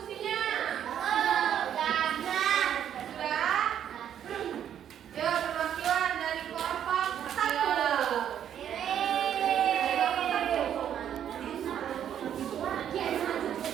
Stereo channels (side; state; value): left; quieter; 9.7 dB